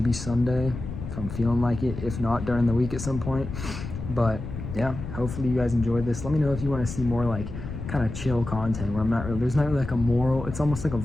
Sunday if I'm feeling like it. If not, during the week at some point. But yeah, hopefully you guys enjoyed this. Let me know if you want to see more like kind of chill content where there's not really like a moral. It's almost like a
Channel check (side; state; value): left; noise; rumble, 8 dB below the sound